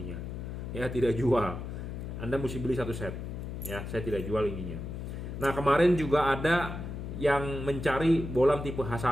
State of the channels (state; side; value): noise; left; hum, 7 dB below the sound